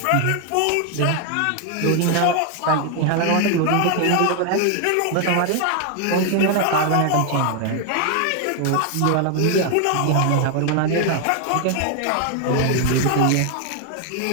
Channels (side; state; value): both; different; correlation 0.01